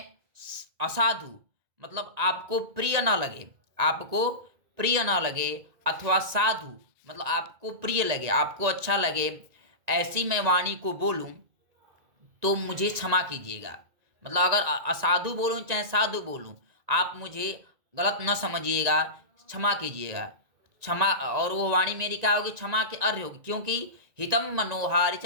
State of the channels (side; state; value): left; late; 1.9 ms